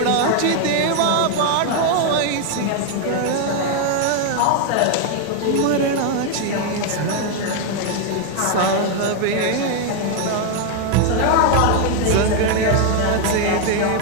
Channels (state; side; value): different; both; correlation 0.01